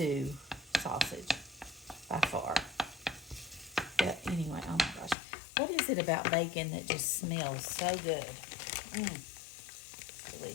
sausage by far. But anyway, oh my gosh. What is it about bacon that just smells so good?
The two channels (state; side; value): drops out; right; at 5.2 s